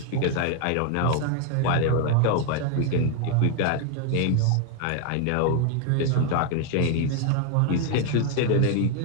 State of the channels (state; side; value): different; both; correlation 0.00